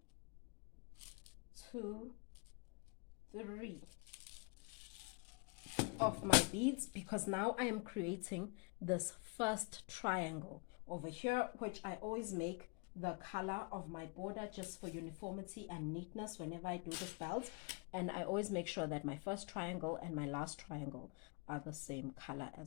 2, 3 of my beads because now I am creating this first triangle over here, which I always make the color of my border just for uniformity and neatness whenever I do this belt, and I always make sure that my first triangle and my last triangle are the same color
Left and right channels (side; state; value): right; quieter; 31.8 dB